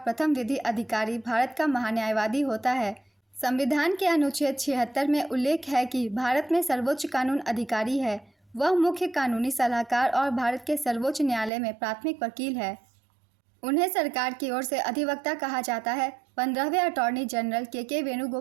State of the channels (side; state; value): left; drops out; at 11.5 s